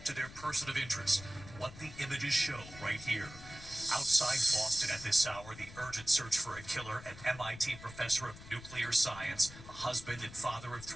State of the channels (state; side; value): noise; left; rumble, 15 dB below the sound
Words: to their person of interest. What the images show right here. Outside Boston at this hour, the urgent search for a killer, an MIT professor of nuclear science, a husband and father of